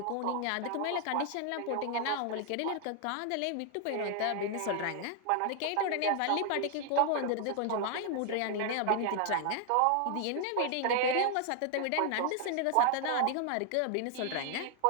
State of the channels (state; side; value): different; both; correlation 0.00